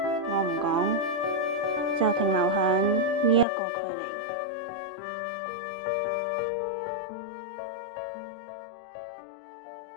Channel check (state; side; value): drops out; right; at 3.5 s